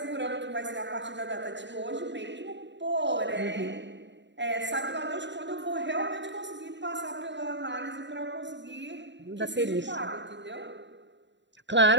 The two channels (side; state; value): left; late; 0.52 ms